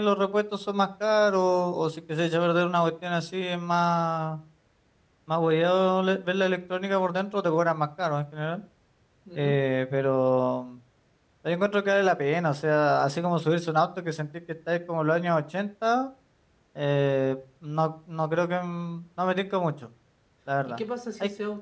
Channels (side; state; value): both; identical; correlation 1.00